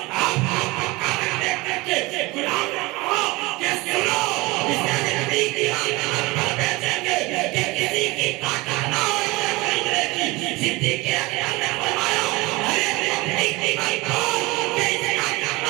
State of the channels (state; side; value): quieter; left; 22.7 dB